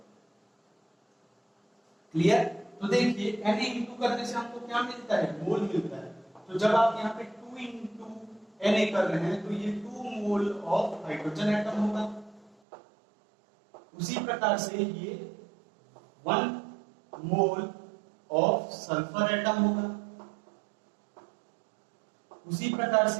क्लियर? तो देखिए Na इंटू करने से हमको क्या मिलता है, मोल मिलता है। तो जब आप यहाँ पे 2 इंटू Na कर रहे हैं तो ये 2 मोल ऑफ हाइड्रोजन एटम होगा, उसी प्रकार से ये 1 मोल ऑफ सल्फर एटम होगा, उसी प्रकार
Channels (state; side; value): drops out; left; at 12.6 s